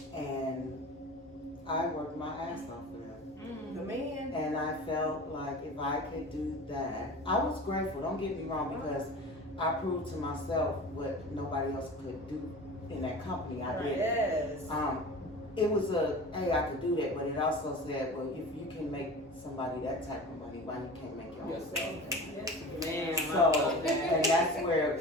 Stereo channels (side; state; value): both; normal; correlation 0.36